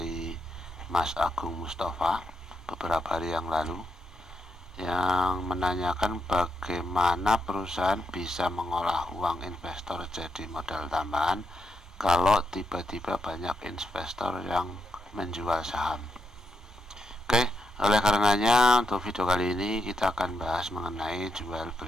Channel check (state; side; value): normal; both; correlation 0.82